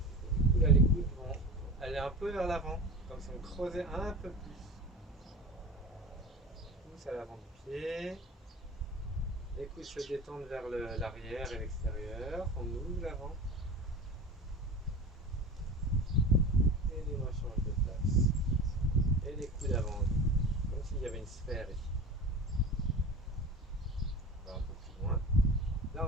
Et du coup là les coudes vont aller un peu vers l'avant, comme si on creusait un peu plus. Pousse à l'avant du pied. Les coudes se détendent vers l'arrière et l'extérieur. On ouvre l'avant. Et les mains changent de place. Et les coudes avant, comme s'il y avait une sphère ici. On va un peu plus loin. Là,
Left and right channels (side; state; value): both; normal; correlation 0.33